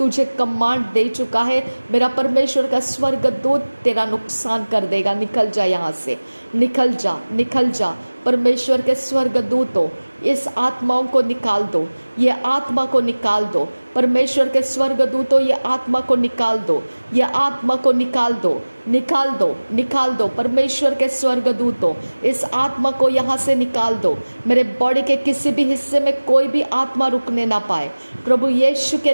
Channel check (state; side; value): inverted; both; correlation -1.00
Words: कमांड दे चुका है। मेरा परमेश्वर का स्वर्गदूत तेरा नुकसान कर देगा। निकल जा यहाँ से, निकल जा, निकल जा। परमेश्वर के स्वर्गदूतों इस आत्माओं को निकाल दो, ये आत्मा को निकाल दो। परमेश्वर के स्वर्गदूतों ये आत्मा को निकाल दो, ये आत्मा को निकाल दो, निकाल दो, निकाल दो। परमेश्वर के स्वर्गदूतों इस आत्मा को यहाँ से निकाल दो। मेरे बॉडी के किसी भी हिस्से में कोई भी आत्मा रुकने ना पाए। प्रभु यीशु के